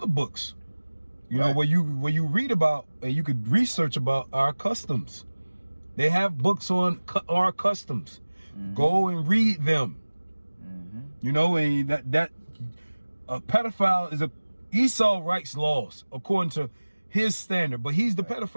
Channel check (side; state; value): both; inverted; correlation -1.00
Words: books, you know, where you read about and you could research about our customs. They have books on our customs. Go and read them. You know, and that a pedophile is Esau writes laws according to his standard, but he's the